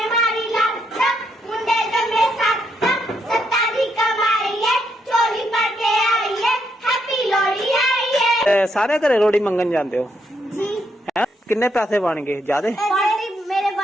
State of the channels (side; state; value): both; normal; correlation 0.77